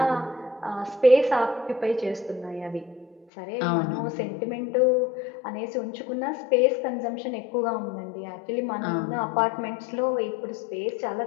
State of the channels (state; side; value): drops out; right; at 3.2 s